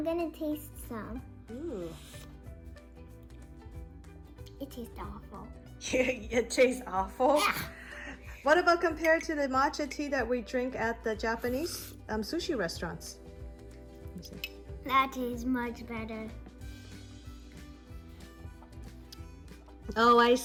gonna taste some. Ooh. It tastes awful. It tastes awful? What about compared to the matcha tea that we drink at the Japanese sushi restaurants? Let me see. That tastes much better. Oh, I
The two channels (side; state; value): both; identical; correlation 1.00